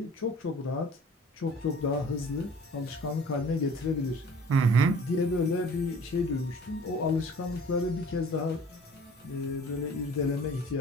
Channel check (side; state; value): both; normal; correlation 0.48